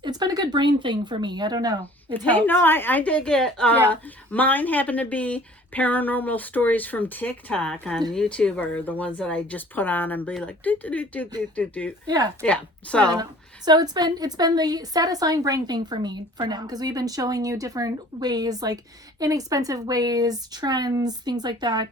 it's been a good brain thing for me. I don't know. I dig it. Yeah. Mine happen to be paranormal stories from TikTok on YouTube, or the ones that I just put on and be like, do. Yeah. Yeah. So it's been the satisfying brain thing for me for now, because we've been showing you different ways, like inexpensive ways, trends, things like that.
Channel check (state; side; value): normal; both; correlation 0.50